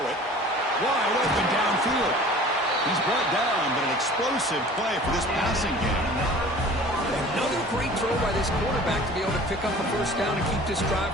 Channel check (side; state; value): both; normal; correlation 0.45